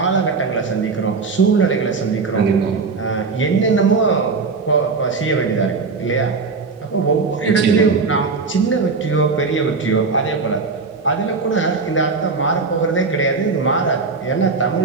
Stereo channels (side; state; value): left; quieter; 4.5 dB